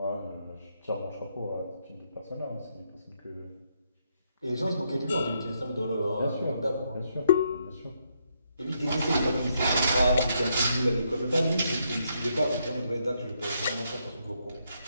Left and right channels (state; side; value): inverted; both; correlation -0.76